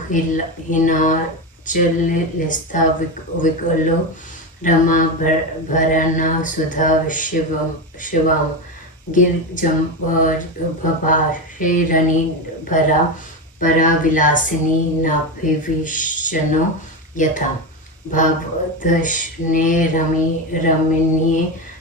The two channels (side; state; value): both; normal; correlation 0.16